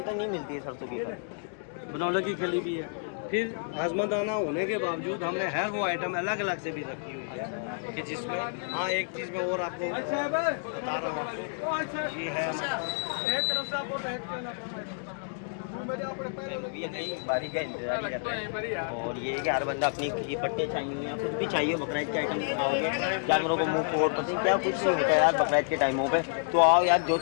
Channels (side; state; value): right; silent; digital silence